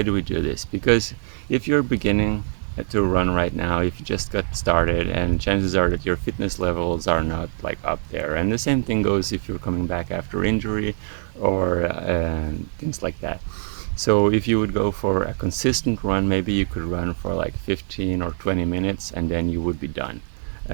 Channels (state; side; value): silent; left; digital silence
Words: do we do this? Because if you're beginning to run right now, if you just got started, and chances are that your fitness levels are not like up there, and the same thing goes if you're coming back after injury or things like that. So if you would go for a consistent run, maybe you could run for like 15 or 20 minutes and then you would be done.